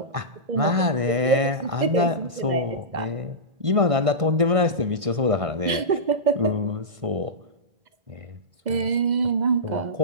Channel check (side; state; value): left; late; 1.5 ms